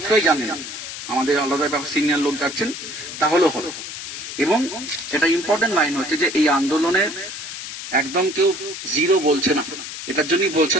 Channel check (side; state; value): left; noise; hiss, 9 dB below the sound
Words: জানে না, আমাদের আলাদা সিনিয়র লোক যাচ্ছেন, তাহলেও হবে। এবং এটা ইম্পর্টেন্ট লাইন হচ্ছে যে এই আন্দোলনের একদম কেউ জিরো বলছে না, এটার জন্যই বলছে